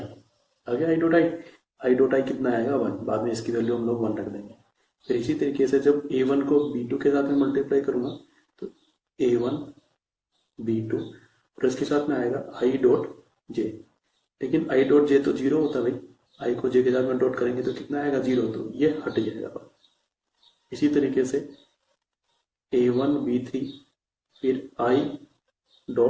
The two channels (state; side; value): identical; both; correlation 1.00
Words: आगे आई डॉट आई कितना आएगा, 1। बाद में इसकी वैल्यू हम लोग 1 रख देंगे। फिर इसी तरीके से जब a1 को b2 के साथ में मल्टीप्लाई करूंगा तो a1 b2, और इसके साथ में आएगा आई डॉट जे, लेकिन आई डॉट जे तो 0 होता है भाई, आई को जे के साथ में डॉट करेंगे तो कितना आएगा, 0, तो ये हट जाएगा। इसी तरीके से a1 b3 फिर आई